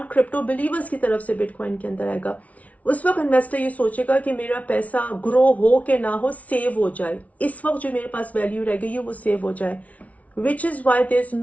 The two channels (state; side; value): late; right; 0.068 ms